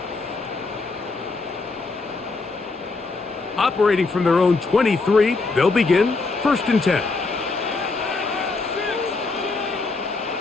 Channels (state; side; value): quieter; right; 3.8 dB